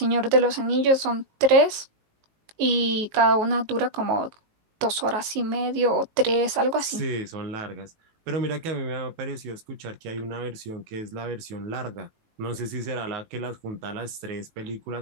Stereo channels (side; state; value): left; late; 19 ms